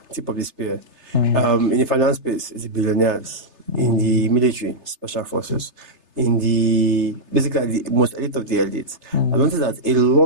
in the finance space, it's the billionaires, in the military, special forces, in the basically the most elite of the elites. I noticed that a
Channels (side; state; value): left; late; 3.3 ms